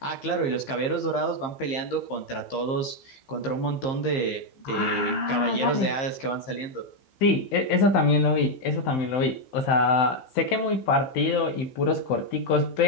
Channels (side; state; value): right; late; 15 ms